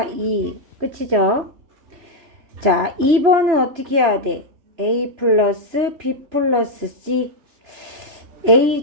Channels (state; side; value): late; left; 3.0 ms